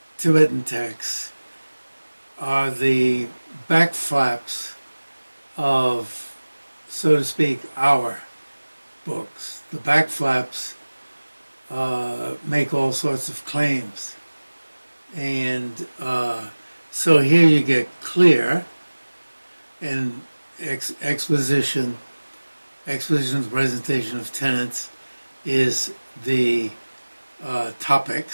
Tibetan texts are the back flaps of, so to speak, our books. The back flaps make all sorts of claims. And so here you get clear and exposition of presentation of tenets is the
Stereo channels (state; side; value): inverted; both; correlation -1.00